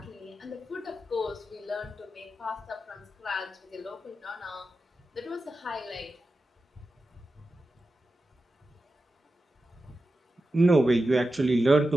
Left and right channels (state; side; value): normal; both; correlation 0.92